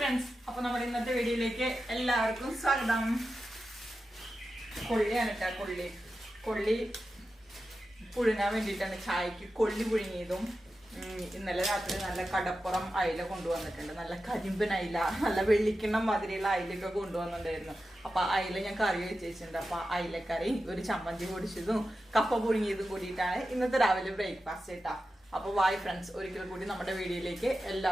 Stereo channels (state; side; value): normal; both; correlation 0.92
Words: അപ്പോൾ നമ്മുടെ ഇന്നത്തെ വീഡിയോയിലേക്ക് എല്ലാവർക്കും സ്വാഗതം. കൊള്ളിയാണ് കേട്ടോ. കൊള്ളി പുഴുങ്ങാൻ വേണ്ടിയിട്ടാണ്. ചായക്ക് കൊള്ളി പുഴുങ്ങിയതും ഇന്നലെ രാത്രി നല്ല കടപ്പുറം അയില കൊണ്ടുവന്നിട്ടുണ്ട്. നല്ല കരിമ്പൻ അയില, നല്ല വെള്ളിക്കിണ്ണം മാതിരിയുള്ള അയിലൊക്കെ കൊണ്ടുവന്നിട്ടുണ്ടായിരുന്നു. അപ്പൊ അയില ഞാൻ കറി വെച്ചിട്ടുണ്ട്. അപ്പൊ അയിലക്കറി, ഒരു ചമ്മന്തി പൊടിച്ചതും കപ്പ പുഴുങ്ങിയതും കൂടിയിട്ടാണ് ഇന്നത്തെ രാവിലെ ബ്രേക്ക്ഫാസ്റ്റ് കേട്ടാ. അപ്പൊ വായ് ഫ്രണ്ട്സ്, ഒരിക്കൽ കൂടി നമ്മുടെ വീഡിയോയിലേക്ക്